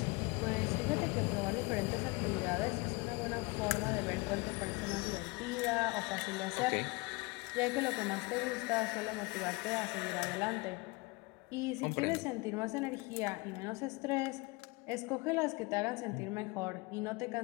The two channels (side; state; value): right; quieter; 25.3 dB